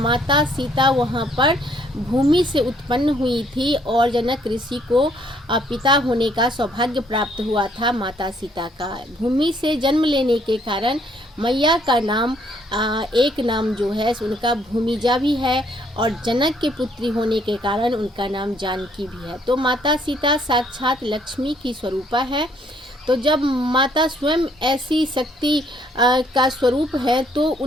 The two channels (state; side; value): normal; both; correlation 0.66